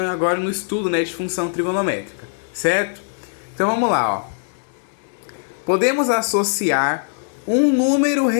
agora no estudo, de função trigonométrica, certo? Então vamos lá, ó. Podemos associar um número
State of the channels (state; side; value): silent; right; 65 dB below the other